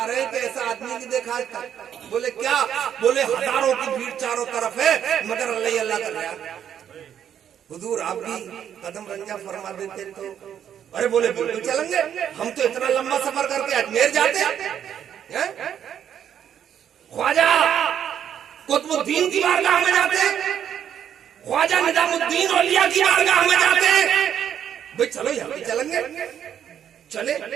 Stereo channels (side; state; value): left; quieter; 9.3 dB